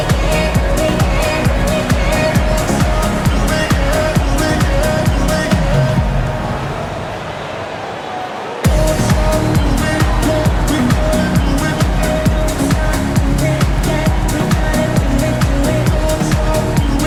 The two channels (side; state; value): both; identical; correlation 1.00